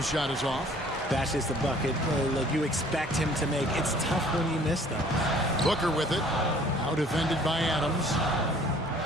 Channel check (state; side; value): normal; both; correlation 0.55